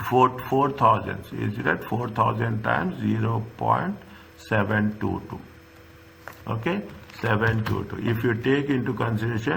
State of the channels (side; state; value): both; identical; correlation 1.00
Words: 4,000. Is it 4,000 times 0.722? Okay, 722. If you take into